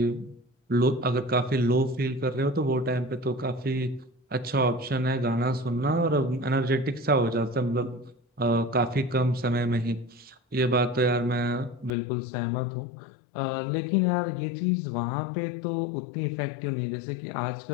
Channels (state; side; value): drops out; right; at 12.0 s